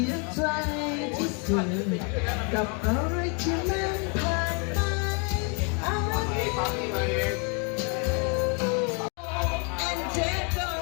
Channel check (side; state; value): right; quieter; 36.8 dB